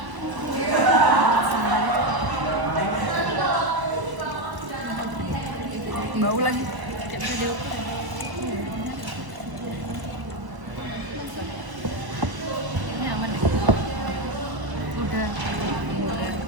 Bau lagi. Ini aman ya? Udah.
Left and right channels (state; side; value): late; left; 1.0 ms